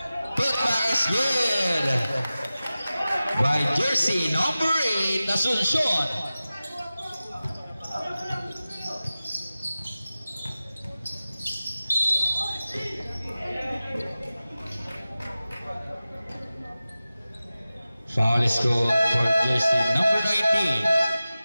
Putback is good. By jersey number 8, Asuncion. Foul is called for jersey number 19.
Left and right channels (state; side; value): inverted; both; correlation -0.96